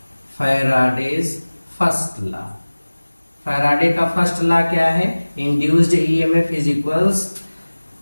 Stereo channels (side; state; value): both; inverted; correlation -1.00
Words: Faraday's first law. Faraday का फर्स्ट लॉ क्या है? Induced EMF is equals